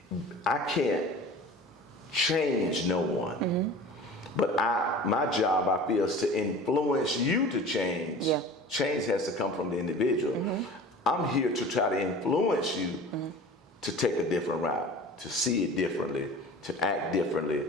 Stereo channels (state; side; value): normal; both; correlation 0.40